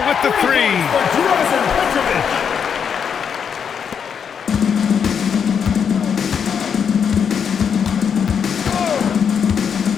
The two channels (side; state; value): right; quieter; 7.2 dB